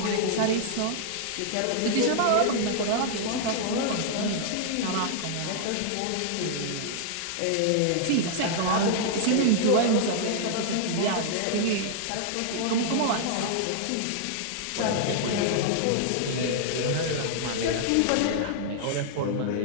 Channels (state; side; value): different; both; correlation -0.01